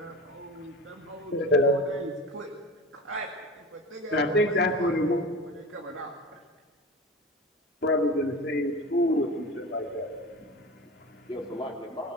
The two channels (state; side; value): normal; both; correlation 0.32